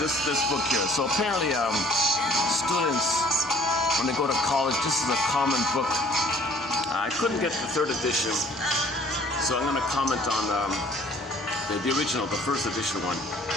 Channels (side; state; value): both; normal; correlation 0.55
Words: this book here. So apparently students, when they go to college, this is a common book. I couldn't get the third edition, so I'm going to comment on the original, the first edition one.